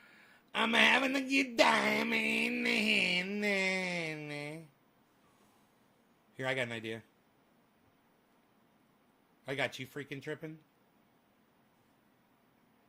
I'm having a good time. Here, I got an idea. I got you freaking tripping.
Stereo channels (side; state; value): both; identical; correlation 1.00